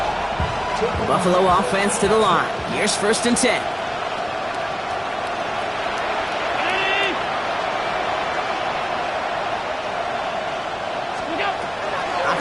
Buffalo offense to the line. Here's first and 10.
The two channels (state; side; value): identical; both; correlation 1.00